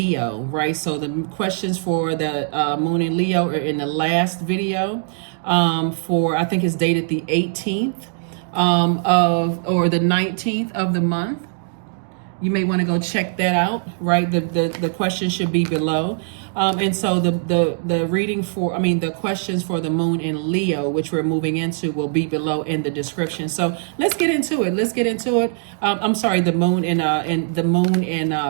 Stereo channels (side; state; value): left; silent; digital silence